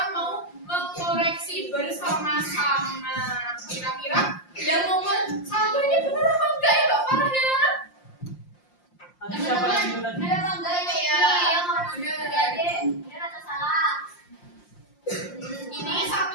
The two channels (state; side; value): late; right; 5.7 ms